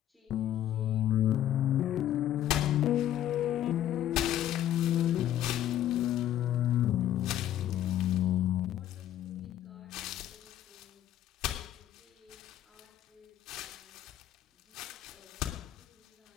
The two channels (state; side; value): quieter; right; 12.0 dB